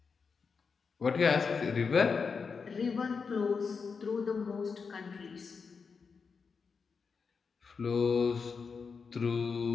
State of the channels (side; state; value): right; quieter; 5.3 dB